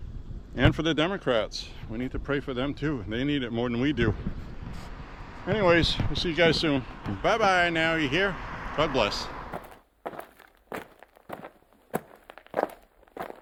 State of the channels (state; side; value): identical; both; correlation 1.00